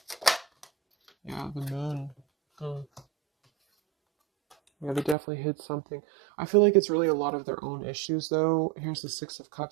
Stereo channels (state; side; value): drops out; left; at 5.2 s